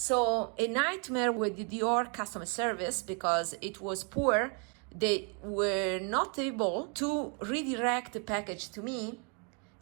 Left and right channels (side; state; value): left; quieter; 36.5 dB